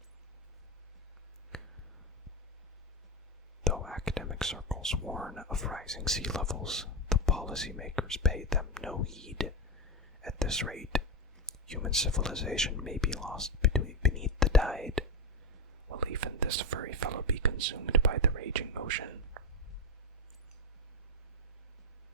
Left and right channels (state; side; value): normal; both; correlation 0.12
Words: Though academic circles warn of rising sea levels, the policymakers pay them no heed. At this rate, human civilization may be lost beneath the tide. Will even this furry fellow be consumed by the raging ocean?